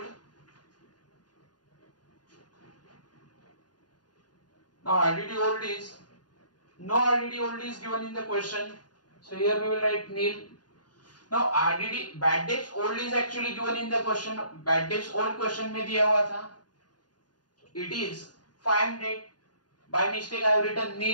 Now RDD old is no RDD old is given in the question. So here we will write nil. Now RDD bad debts old is actually given in the question. Bad debts old question में दिया हुआ था. It is 500. By mistake I have written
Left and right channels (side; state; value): right; late; 0.69 ms